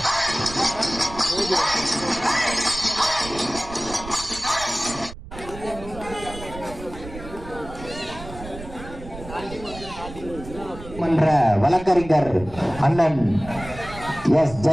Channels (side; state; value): right; noise; rumble, 13 dB below the sound